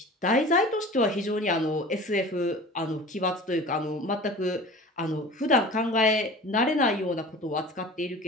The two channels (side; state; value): both; normal; correlation 0.40